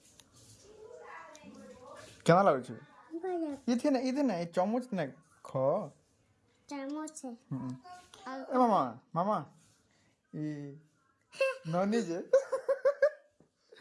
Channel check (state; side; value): identical; both; correlation 1.00